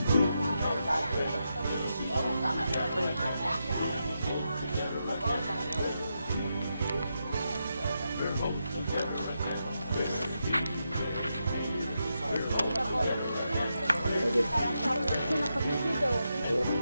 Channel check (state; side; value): inverted; both; correlation -0.85